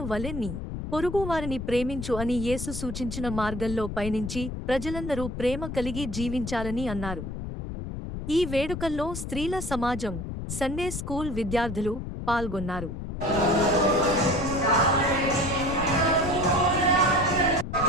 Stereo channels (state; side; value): noise; left; rumble, 6 dB below the sound